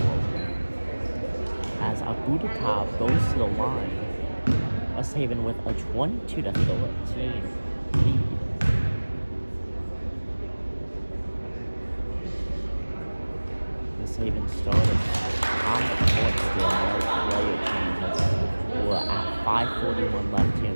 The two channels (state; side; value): inverted; both; correlation -1.00